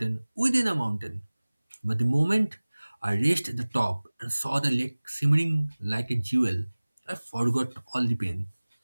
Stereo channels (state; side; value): inverted; both; correlation -1.00